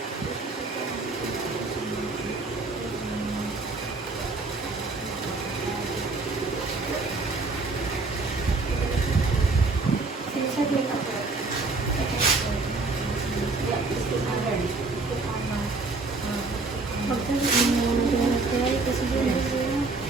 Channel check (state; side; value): quieter; left; 3.6 dB